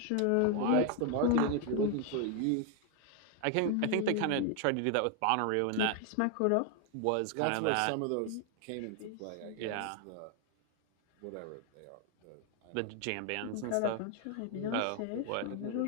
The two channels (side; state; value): both; different; correlation 0.01